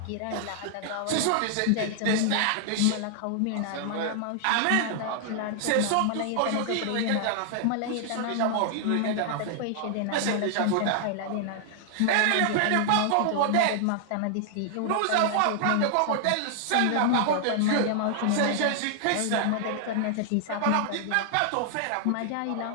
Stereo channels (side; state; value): both; different; correlation 0.00